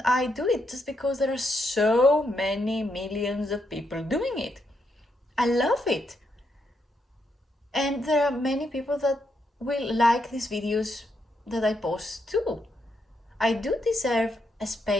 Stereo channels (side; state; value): both; normal; correlation 0.79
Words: I do it just because there are so many millions of people doing it? I love it. And there are many people that will like these videos that I post too. I do deserve a